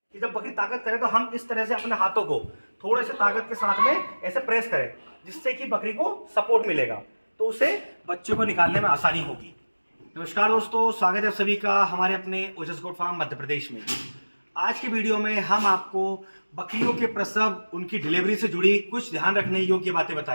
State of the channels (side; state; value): both; inverted; correlation -1.00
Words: जब बकरी ताकत करे तो हम इस तरह से अपने हाथों को थोड़े से ताकत के साथ में ऐसे प्रेस करें, जिससे कि बकरी को सपोर्ट मिलेगा, तो उसे बच्चे को निकालने में आसानी होगी। नमस्कार दोस्तों, स्वागत है सभी का हमारे अपने ओजस गोट फार्म मध्य प्रदेश में। आज की वीडियो में हम आपको बकरियों के प्रसव, उनकी डिलीवरी से जुड़ी कुछ ध्यान रखने योग्य बातें